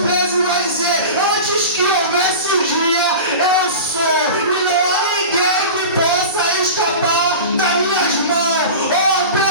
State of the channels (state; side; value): inverted; both; correlation -0.32